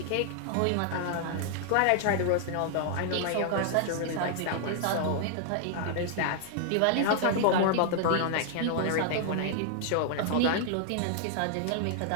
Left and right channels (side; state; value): both; different; correlation 0.00